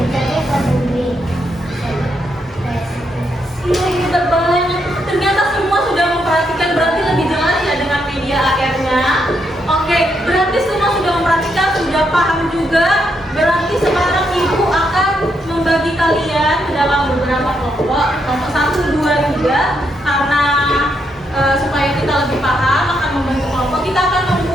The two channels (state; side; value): normal; both; correlation 0.79